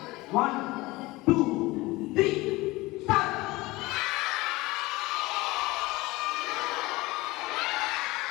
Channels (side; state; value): right; quieter; 20.9 dB